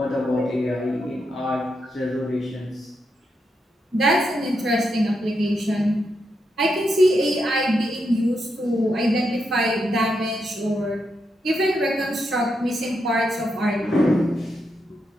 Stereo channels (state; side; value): normal; both; correlation 0.83